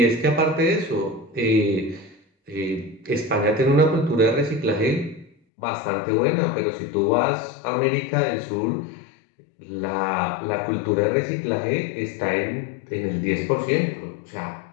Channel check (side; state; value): right; drops out; at 5.3 s